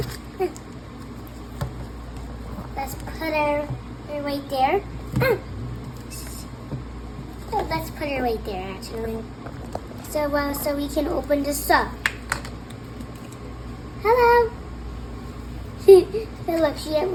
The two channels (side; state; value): both; identical; correlation 1.00